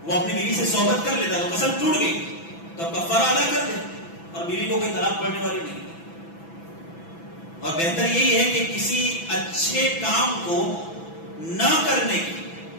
وہ اپنی بیوی سے صحبت کر لیتا تو قسم ٹوٹ گئی، تو اب کفارہ ادا کر دے اور بیوی کو کوئی طلاق پڑنے والی نہیں. اور بہتر یہی ہے کہ کسی اچھے کام کو نہ کرنے کی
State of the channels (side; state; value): right; late; 6.0 ms